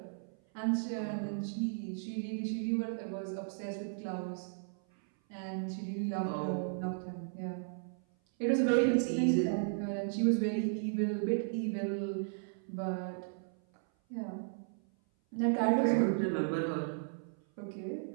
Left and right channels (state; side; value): silent; left; 54 dB below the other